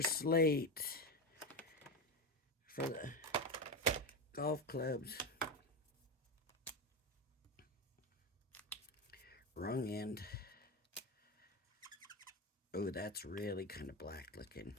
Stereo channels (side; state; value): both; normal; correlation 0.16